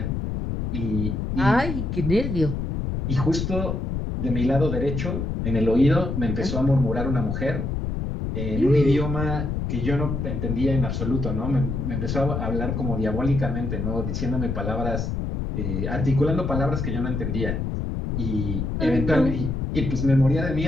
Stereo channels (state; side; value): noise; left; rumble, 2 dB below the sound